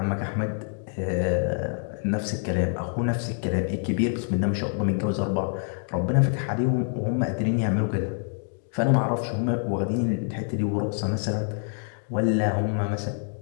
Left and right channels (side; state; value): right; silent; 56 dB below the other